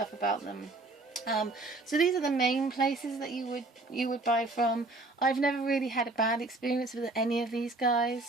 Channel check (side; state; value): left; quieter; 3.0 dB